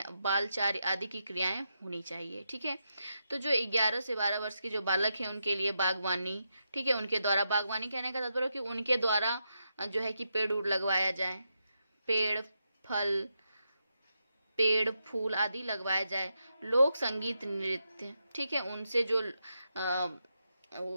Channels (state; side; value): inverted; both; correlation -0.85